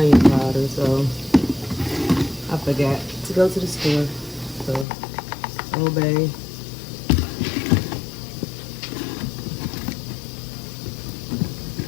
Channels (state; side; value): drops out; right; at 4.9 s